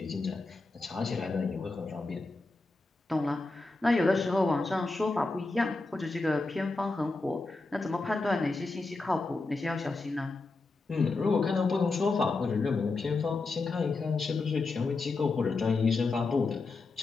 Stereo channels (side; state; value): right; quieter; 3.6 dB